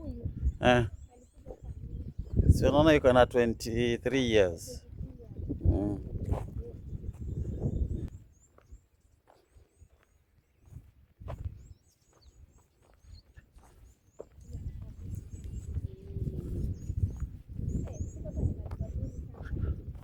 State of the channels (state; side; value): identical; both; correlation 1.00